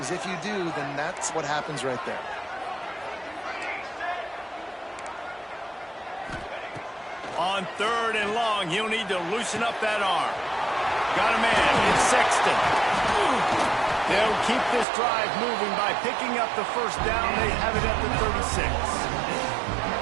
if you do, then that's what happens right there. On third and long, he'll need to loosen up that arm. Got a man, it's Sexton. They'll keep this drive moving by picking up the first down. They have it at the 36.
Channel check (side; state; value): left; drops out; at 14.9 s